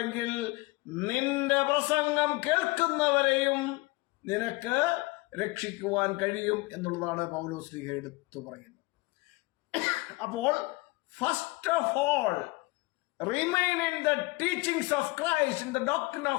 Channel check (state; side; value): quieter; right; 23.4 dB